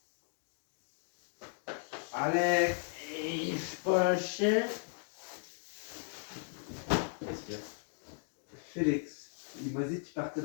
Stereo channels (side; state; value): right; silent; 54 dB below the other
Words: Alex? Hey, je suis pas un chien. Qu'est-ce qu'il y a? Félix, il m'a dit qu'il partait